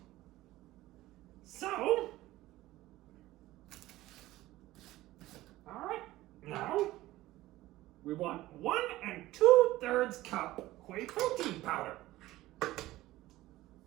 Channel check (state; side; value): quieter; left; 16.8 dB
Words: So, all right, now we want 1 2/3 cup whey protein powder.